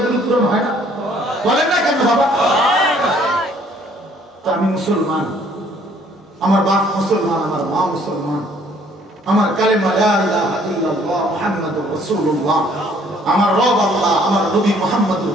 পূরণ হয় না? বলেন না কেন বাবা? তো আমি মুসলমান, আমার বাপ মুসলমান, আমার মা মুসলমান, আমার কালেমা লা ইলাহা ইল্লাল্লাহ মুহাম্মাদুর রাসূলুল্লাহ, আমার রব আল্লাহ, আমার নবী মুহাম্মদুর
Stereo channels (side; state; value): both; normal; correlation 0.61